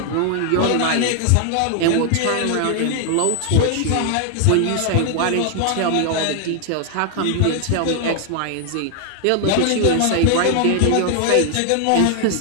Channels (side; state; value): both; different; correlation 0.00